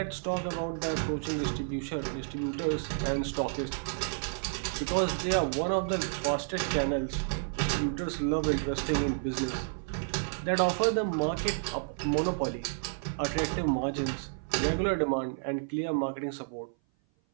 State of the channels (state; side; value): silent; left; 56 dB below the other